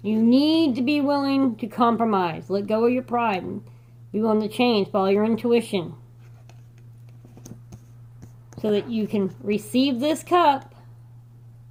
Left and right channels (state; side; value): identical; both; correlation 1.00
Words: You need to be willing to compromise. Let go of your pride. Be willing to change. Follow your intuition. So that you can receive this cup